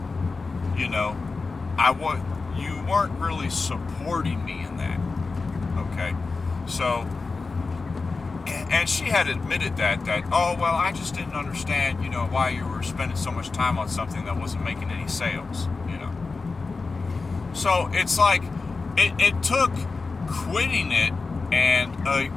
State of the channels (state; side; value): quieter; right; 4.1 dB